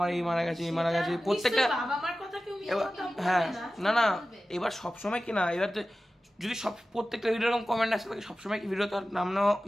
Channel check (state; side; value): normal; both; correlation 0.95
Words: এই মারা গেছে, এই মারা গেছে, সেটা প্রত্যেকটা নিশ্চয়ই বাবা মার কথা কেউ মিথ্যা এবার কথা বলবে হ্যাঁ না। না না এবার সবসময় কি না, এবার তো যদি সব প্রত্যেকটা ভিডিও এরকম কমেন্ট আসে থাকে সবসময় কি ভিডিও তো আর নাম নেওয়া